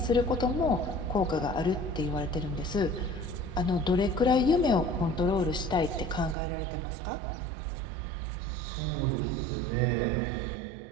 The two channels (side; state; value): left; drops out; at 6.4 s